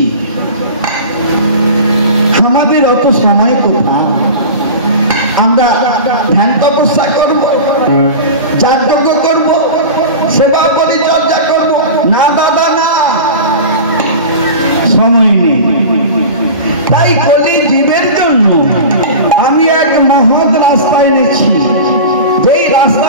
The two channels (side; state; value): both; inverted; correlation -0.32